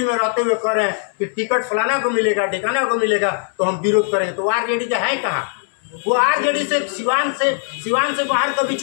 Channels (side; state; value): right; silent; 66 dB below the other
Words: में रहते हुए कह रहे हैं कि टिकट फलाना को मिलेगा, ठिकाना को मिलेगा तो हम विरोध करेंगे। तो आरजेडी का है कहाँ? वो आरजेडी से सिवान से बाहर कभी